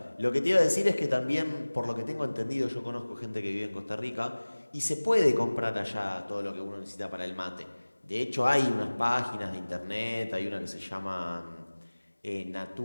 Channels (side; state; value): both; inverted; correlation -1.00